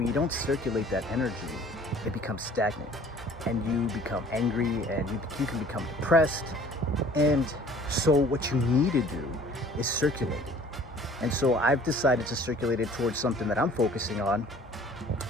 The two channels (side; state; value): both; normal; correlation 0.51